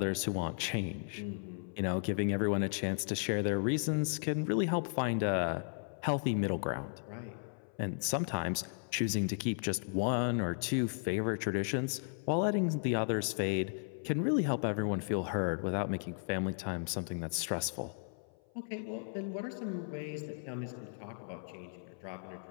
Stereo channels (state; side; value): silent; right; 54 dB below the other